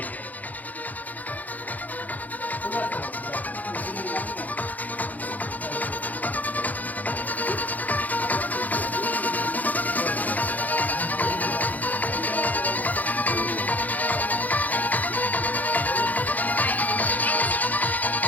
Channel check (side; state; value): right; late; 0.080 ms